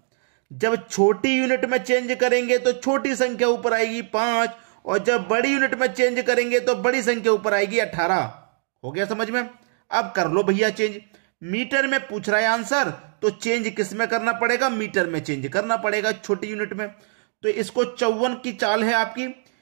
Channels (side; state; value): left; silent; 61 dB below the other